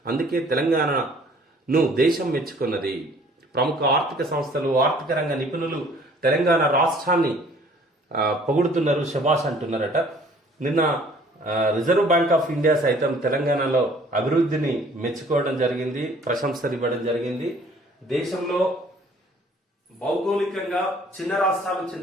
అందుకే తెలంగాణను దేశం మెచ్చుకున్నది. ప్రముఖ ఆర్థిక సంస్థలు, ఆర్థిక రంగ నిపుణులు తెలంగాణ రాష్ట్రాన్ని పొగుడుతున్నారు, శభాష్ అంటున్నారట. నిన్న రిజర్వ్ బ్యాంక్ ఆఫ్ ఇండియా సైతం తెలంగాణలో అభివృద్ధిని మెచ్చుకోవడం జరిగింది, ప్రశంసలు ఇవ్వడం జరిగింది. దేశంలో భౌగోళికంగా చిన్న రాష్ట్రాలు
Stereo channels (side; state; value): both; normal; correlation 0.55